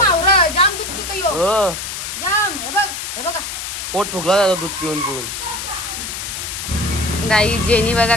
हावडा जाम दूध पितो यो जाम. हे बघ हे बघा पोट फुगला जातो दूध पिऊन पिऊन. गाई जेनी बघा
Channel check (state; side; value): noise; left; hiss, 6 dB below the sound